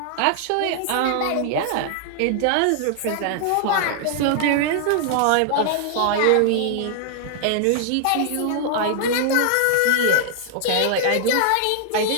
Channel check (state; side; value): different; both; correlation 0.00